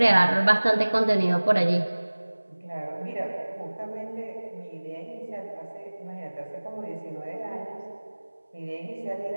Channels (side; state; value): both; inverted; correlation -1.00